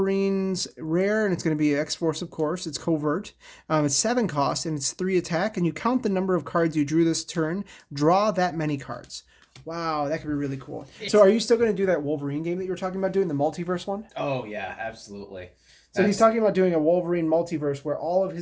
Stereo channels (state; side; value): identical; both; correlation 1.00